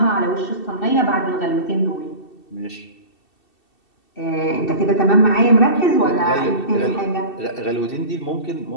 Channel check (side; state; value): right; late; 2.7 ms